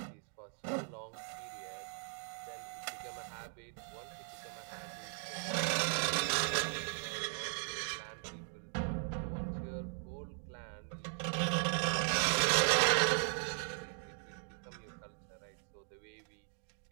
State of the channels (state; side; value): silent; left; 52 dB below the other